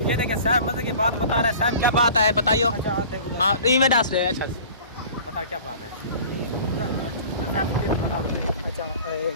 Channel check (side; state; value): both; inverted; correlation -0.44